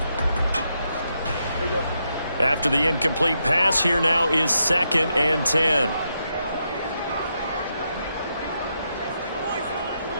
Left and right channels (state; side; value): inverted; both; correlation -0.82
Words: After the incomplete pass, here now is 2nd and 10.